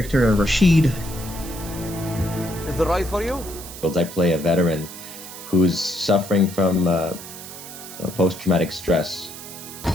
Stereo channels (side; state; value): right; noise; hiss, 13 dB below the sound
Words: Rashid. Is it right for you? I play a veteran who's suffering from post-traumatic stress. You